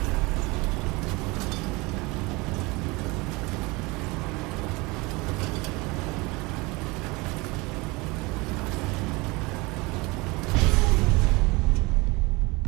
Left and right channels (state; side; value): quieter; left; 24.6 dB